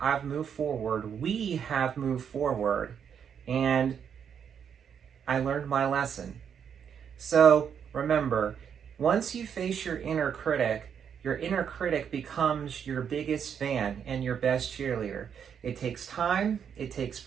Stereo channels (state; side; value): quieter; left; 7.8 dB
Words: I've moved forward. We have moved forward. And I learned my lesson. So remember, once you face your inner critic becomes your biggest fan and your best cheerleader. It takes time, it takes